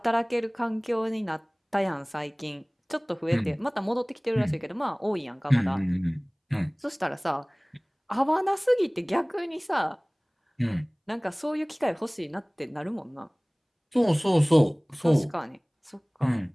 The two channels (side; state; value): both; identical; correlation 1.00